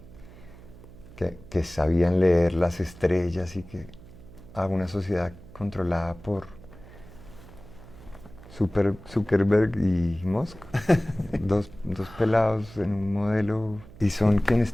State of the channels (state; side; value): noise; right; hum, 19 dB below the sound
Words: sabían leer las estrellas, y a una sociedad controlada por Zuckerberg y Musk, dos pelados en un modelo, y son quienes